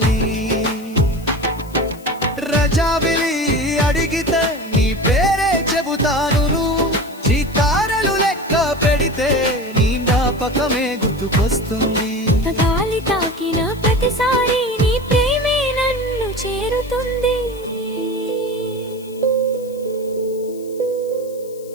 రజావిలి అడిగితే నీ పేరే చెబుతాను చితారలు లెక్క పెడితే నీ జ్ఞాపకమే గుర్తుకొస్తుంది గాలి తాకిన ప్రతిసారి నీ ప్రేమే నన్ను చేరుతుంది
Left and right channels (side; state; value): left; noise; hiss, 23 dB below the sound